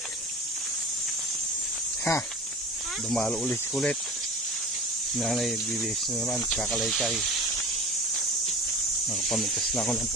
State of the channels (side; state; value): both; normal; correlation 0.36